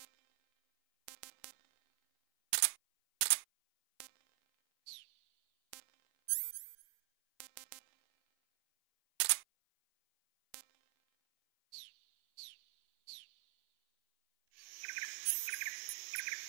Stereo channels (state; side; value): silent; left; 50 dB below the other